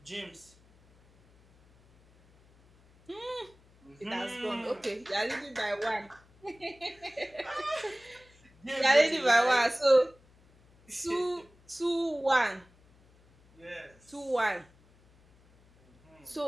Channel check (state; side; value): noise; left; hum, 29 dB below the sound